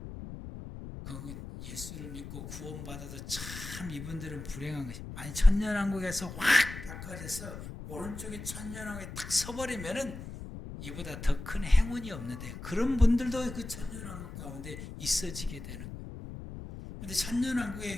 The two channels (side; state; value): left; noise; rumble, 10 dB below the sound